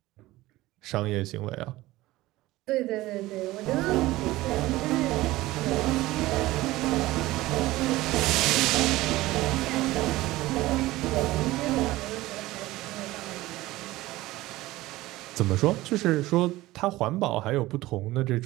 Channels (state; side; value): quieter; left; 17.9 dB